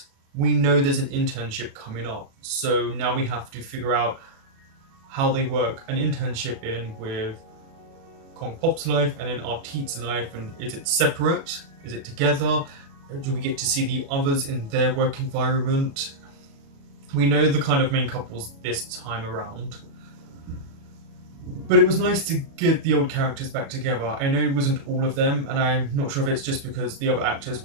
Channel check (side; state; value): left; late; 36 ms